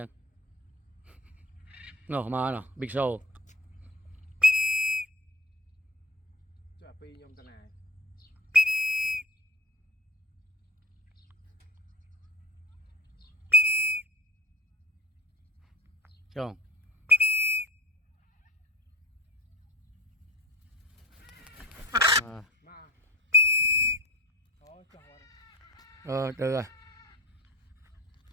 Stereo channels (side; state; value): both; normal; correlation 0.37